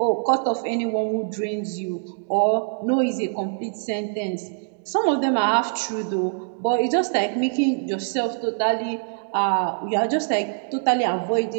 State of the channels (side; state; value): left; silent; 63 dB below the other